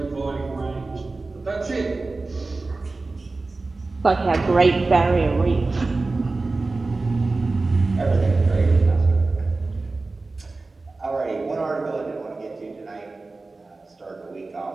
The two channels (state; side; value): quieter; left; 3.5 dB